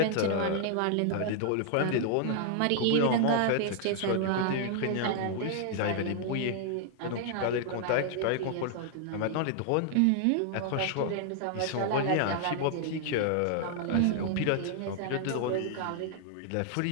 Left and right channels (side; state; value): both; different; correlation 0.00